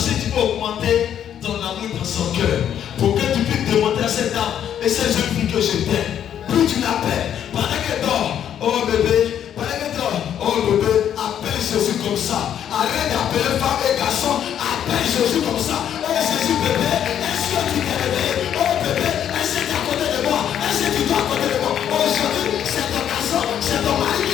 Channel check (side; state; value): right; quieter; 9.7 dB